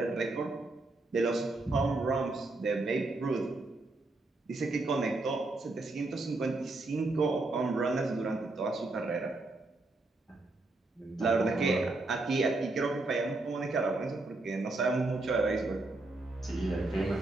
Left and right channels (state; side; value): quieter; left; 3.1 dB